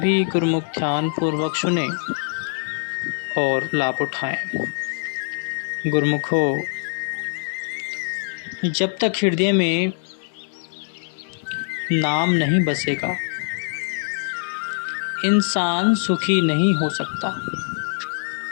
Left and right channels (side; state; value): right; silent; 63 dB below the other